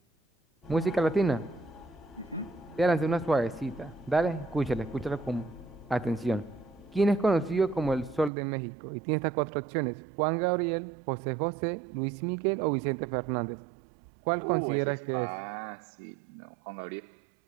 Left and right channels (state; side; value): drops out; left; at 8.3 s